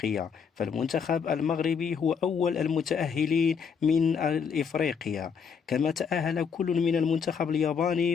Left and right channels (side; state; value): right; quieter; 6.5 dB